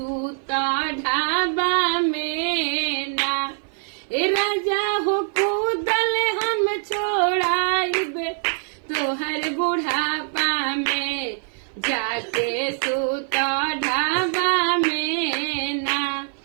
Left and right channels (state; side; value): silent; left; 57 dB below the other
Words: ढाबा में ना ए राजा हो कूदल हम छोड़ाइबे तोहर बुढ़ापा में जाके सूता ढाबा में ना